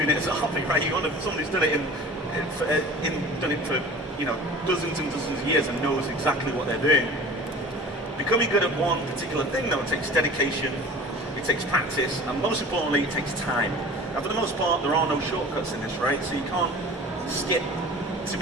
it as a hobby, right? You want someone who's done it for dozens and dozens of years and knows exactly what they're doing. Becoming good at one particular thing, though, it takes dedication, it takes practice, and most importantly, it takes time. Now, for the most part, there are no shortcuts in this, right? So you can't skip to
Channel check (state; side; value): normal; both; correlation 0.41